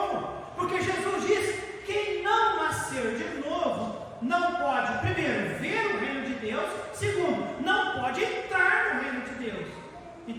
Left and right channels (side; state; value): both; identical; correlation 1.00